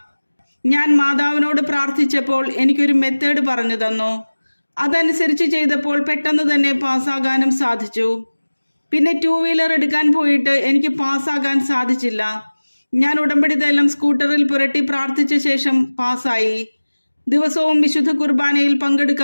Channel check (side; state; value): both; inverted; correlation -1.00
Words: ഞാൻ മാതാവിനോട് പ്രാർത്ഥിച്ചപ്പോൾ എനിക്കൊരു മെത്തേഡ് പറഞ്ഞു തന്നു. അതനുസരിച്ച് ചെയ്തപ്പോൾ പെട്ടെന്ന് തന്നെ പാസ്സാകാനും സാധിച്ചു. പിന്നെ 2 വീലർ എടുക്കാൻ പോയിട്ട് എനിക്ക് പാസ്സാകാൻ സാധിച്ചില്ല. ഞാൻ ഉടമ്പടി തൈലം സ്കൂട്ടറിൽ പുരട്ടി പ്രാർത്ഥിച്ച ശേഷം പാസ്സായി. ദിവസവും വിശുദ്ധ കുർബാനയിൽ